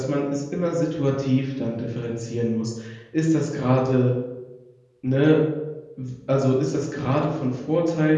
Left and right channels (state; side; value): identical; both; correlation 1.00